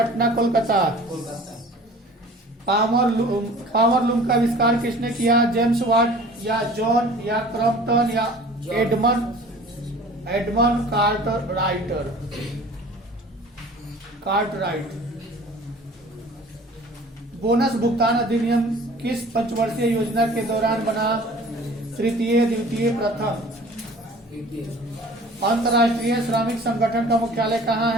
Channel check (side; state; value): both; normal; correlation 0.46